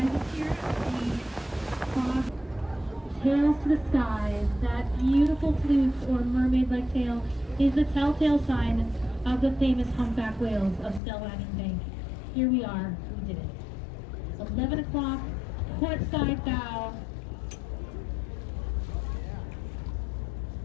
Tails to the skies, that beautiful flukes or mermaid-like tail is the telltale sign of the famous humpback whales of Stellwagen Bank. Here we are, we did it. 11 o'clock, port side bow.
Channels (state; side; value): drops out; right; at 11.0 s